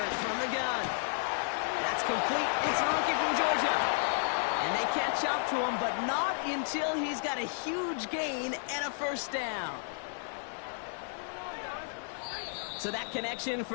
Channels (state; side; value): silent; right; 56 dB below the other